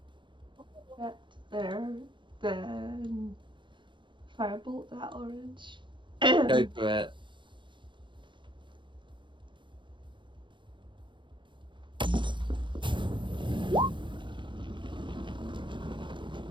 That there, then firebolt that orange. Go for it.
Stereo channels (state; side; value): late; left; 0.23 ms